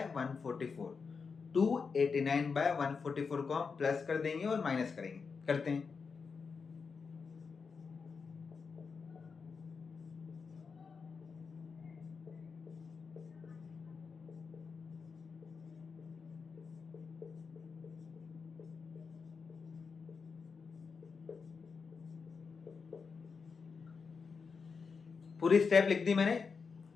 289/144 को हम प्लस कर देंगे और माइनस करेंगे, करते हैं। पूरी स्टेप लिख दी मैंने,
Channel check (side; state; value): right; quieter; 5.3 dB